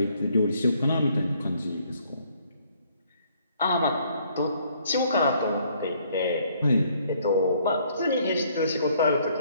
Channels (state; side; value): inverted; both; correlation -0.65